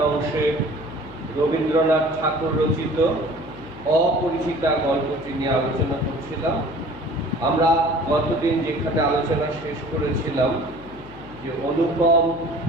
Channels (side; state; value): left; noise; hum, 17 dB below the sound